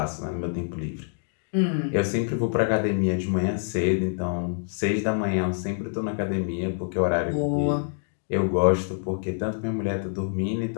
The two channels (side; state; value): right; silent; digital silence